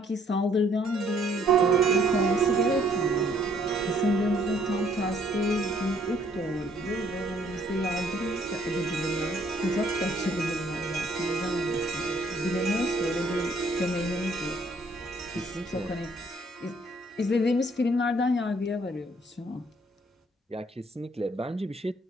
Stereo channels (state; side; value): normal; both; correlation 0.64